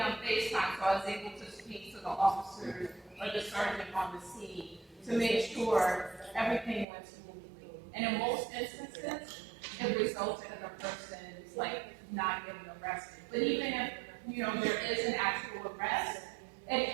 FaceTime, so I was able to speak to the officer or the sergeant on the scene to make sure everything went smoothly. And in most instances, it resulted in a person like not getting arrested. But even if there is an actual arrest, it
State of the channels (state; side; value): drops out; left; at 6.9 s